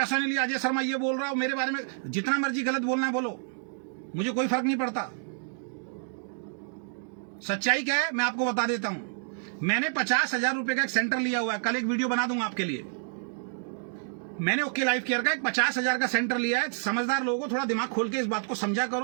नहीं लिया, अजय शर्मा ये बोल रहा हूं मेरे बारे में, जितना मर्जी गलत बोलना है बोलो, मुझे कोई फर्क नहीं पड़ता। सच्चाई क्या है मैं आपको बता देता हूं। मैंने 50,000 रुपए का एक सेंटर लिया हुआ है, कल एक वीडियो बना दूंगा आपके लिए। मैंने ओके लाइफ केयर का एक 50,000 का सेंटर लिया है। समझदार लोगों को थोड़ा दिमाग खोल के इस बात को समझा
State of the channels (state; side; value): silent; left; digital silence